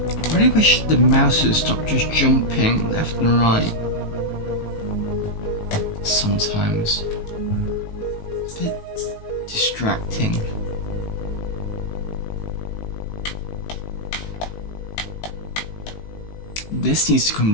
I really wish the mouse would stop just jumping left and right. Sometimes. It's a bit distracting. This needs to come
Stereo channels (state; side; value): late; right; 18 ms